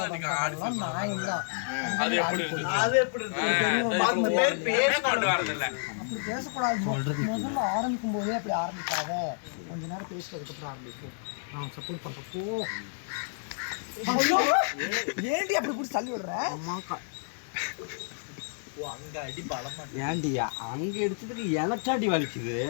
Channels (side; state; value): right; silent; digital silence